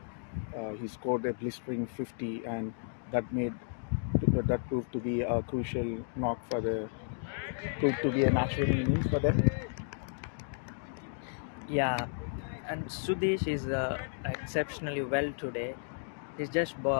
He scored a blistering 50, and that proved to be a crucial knock proved to be a match-winning innings for them. yeah, and Sudesh is exceptionally well today. He's just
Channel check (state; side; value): silent; right; digital silence